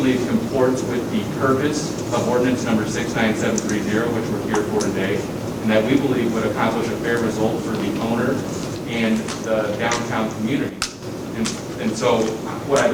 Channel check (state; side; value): identical; both; correlation 1.00